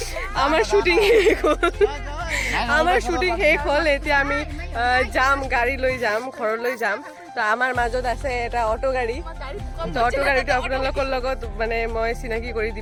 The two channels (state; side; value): identical; both; correlation 1.00